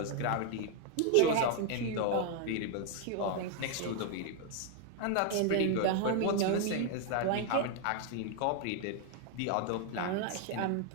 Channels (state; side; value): different; both; correlation 0.00